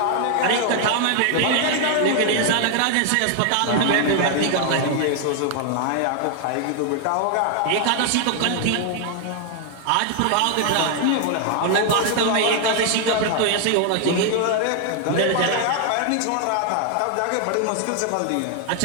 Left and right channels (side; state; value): both; different; correlation 0.00